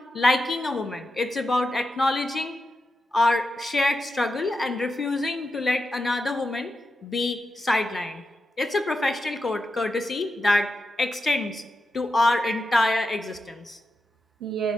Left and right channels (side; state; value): both; normal; correlation 0.88